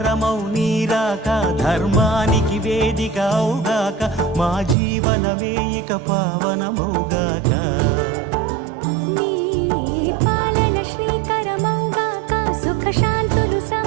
నీరాక ధర్మానికి వేదిక అవుగాక మా జీవనమే ఇక పావనమౌగాక నీ పాలన శ్రీకరమౌగాక సుఖ శాంతులు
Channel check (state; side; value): drops out; left; at 4.8 s